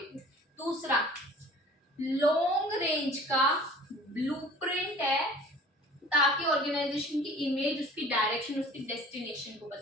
दूसरा, लॉन्ग रेंज का ब्लूप्रिंट है ताकि ऑर्गेनाइजेशन की इमेज, उसकी डायरेक्शन, उसकी डेस्टिनेशन को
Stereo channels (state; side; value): normal; both; correlation 0.47